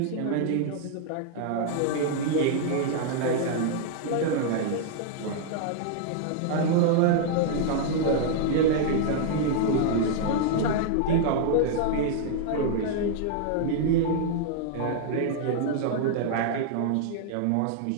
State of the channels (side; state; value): both; different; correlation -0.01